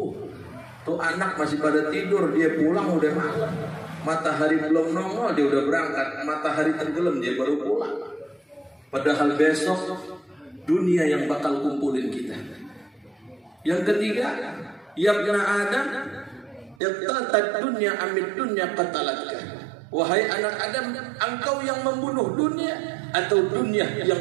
Tuh anak masih pada tidur, dia pulang udah malam. Matahari belum nongol dia udah berangkat, matahari tenggelam dia baru pulang. Padahal besok dunia yang bakal kumpulin kita. Yang ketiga, ya ibna Adam, iqtatat dunya amid dunya qatalatka. Wahai anak Adam, engkau yang membunuh dunia atau dunia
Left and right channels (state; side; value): drops out; left; at 16.8 s